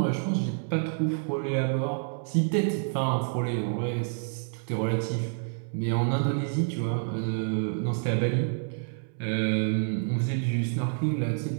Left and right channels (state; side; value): silent; left; 59 dB below the other